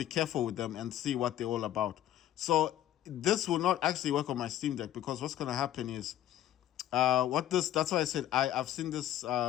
careful with them and see what they're all about. So this will not actually work on my Steam Deck, because what's gonna happen is that's why I said I've seen this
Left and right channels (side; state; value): right; quieter; 12.3 dB